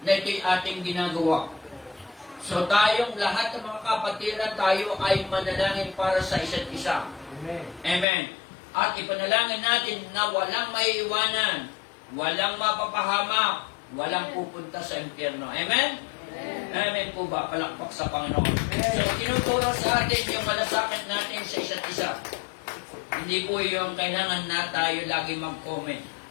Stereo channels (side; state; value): right; drops out; at 8.1 s